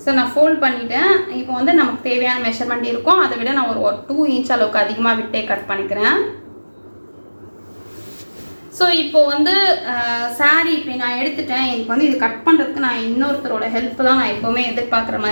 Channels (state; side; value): inverted; both; correlation -1.00